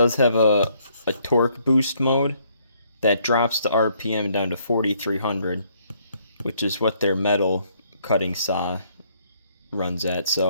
have a torque boost mode that drops the RPM down to 4,300, which is what their metal cutting saw runs at.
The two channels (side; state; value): both; inverted; correlation -0.68